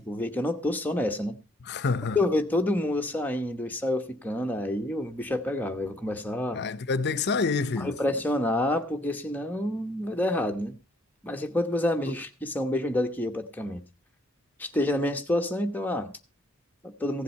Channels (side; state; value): both; normal; correlation 0.65